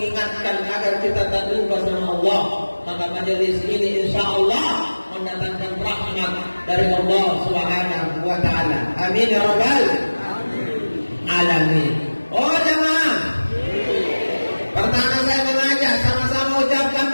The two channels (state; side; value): inverted; both; correlation -1.00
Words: agar kita tak lupa sama Allah. Maka majelis ini insya Allah mendatangkan rahmat dari Allah Subhanahu wa Ta'ala. Amin ya rabbal alamin. Oh jemaah, pertama saya mengajak sama-sama ucapkan